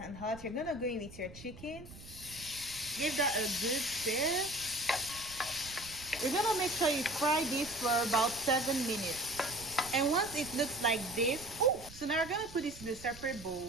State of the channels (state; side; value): noise; right; rumble, 17 dB below the sound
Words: hot, you're gonna go in with your chicken. Give that a good stir. You're gonna make sure you fry this for about 7 minutes. And once it looks like this, so now we're gonna put this in a separate